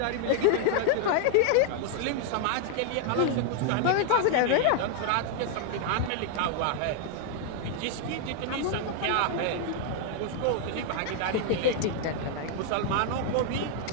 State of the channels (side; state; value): both; different; correlation 0.00